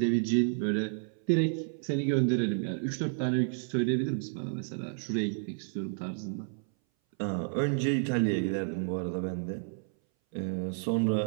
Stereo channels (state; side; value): silent; left; 57 dB below the other